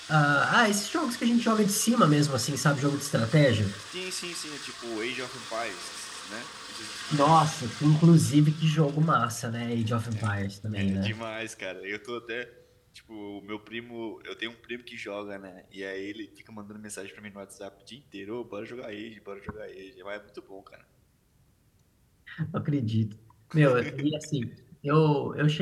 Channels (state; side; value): identical; both; correlation 1.00